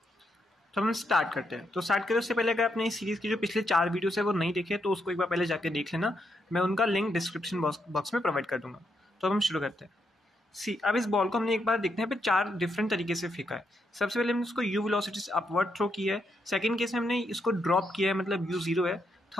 तो हम स्टार्ट करते हैं। तो स्टार्ट करने से पहले अगर आपने इस सीरीज की जो पिछले 4 वीडियोस है वो नहीं देखे तो उसको एक बार पहले जाके देख लेना। मैं उनका लिंक डिस्क्रिप्शन बॉक्स में प्रोवाइड कर दूंगा। तो अब हम शुरू करते हैं। अब इस बॉल को हमने एक बार देखते हैं पे 4 डिफरेंट तरीके से फेंका है। सबसे पहले हमने इसको यू वेलोसिटी से अपवर्ड थ्रो किया है। सेकंड केस में हमने इसको ड्रॉप किया है, मतलब यू 0 है।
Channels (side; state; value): both; normal; correlation 0.79